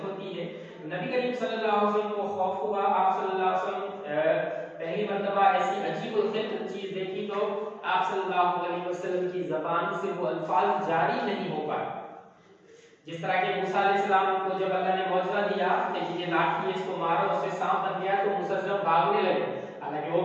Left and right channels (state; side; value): identical; both; correlation 1.00